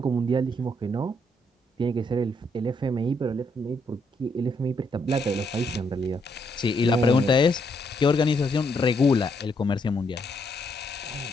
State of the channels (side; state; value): both; normal; correlation 0.74